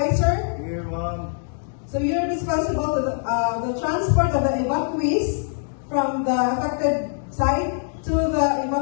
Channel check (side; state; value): right; silent; digital silence